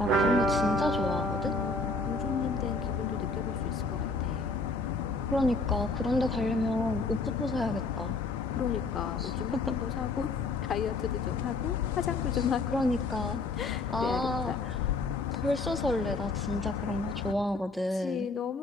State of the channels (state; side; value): quieter; right; 3.4 dB